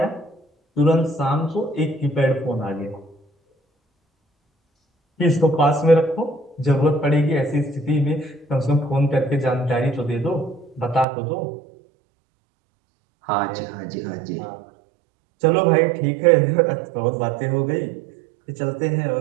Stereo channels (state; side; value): drops out; left; at 11.1 s